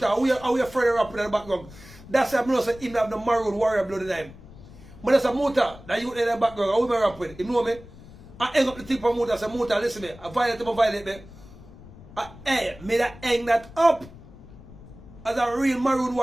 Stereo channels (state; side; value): noise; left; rumble, 19 dB below the sound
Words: how we afraid of rapping in the background. That's why I know that him have the Maroon warrior blood in him. But that's a Muta, that you in the background, how we rap with. You know me? I hang up the tip of Muta, I say, Muta, listen me, I violate me. Me that hang that up. As a real Maroon